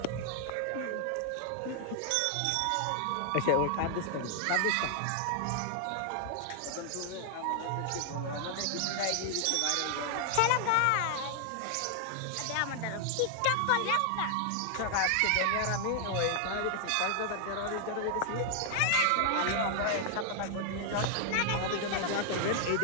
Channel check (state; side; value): different; both; correlation 0.00